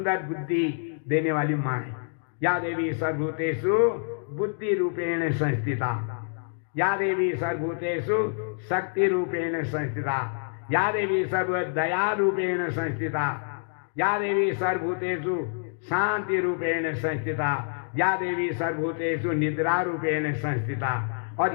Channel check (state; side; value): silent; right; digital silence